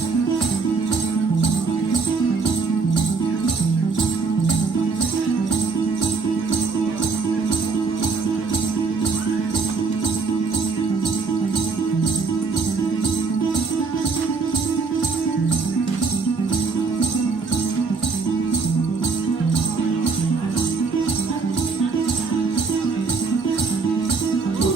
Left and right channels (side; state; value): left; quieter; 4.6 dB